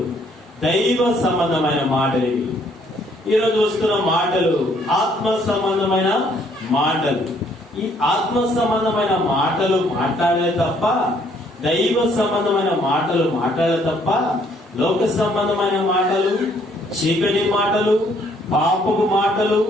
దైవ సంబంధమైన మాటలు. ఇవి ఈ రోజు వస్తున్న మాటలు ఆత్మ సంబంధమైన మాటలు. ఈ ఆత్మ సంబంధమైన మాటలు మాట్లాడలే తప్ప, దైవ సంబంధమైన మాటలు మాట్లాడలే తప్ప, లోక సంబంధమైన మాటలు, చీకటి మాటలు, పాపపు మాటలు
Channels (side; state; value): both; normal; correlation 0.65